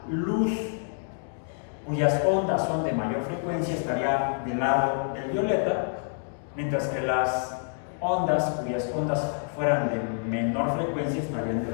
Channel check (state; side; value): silent; right; digital silence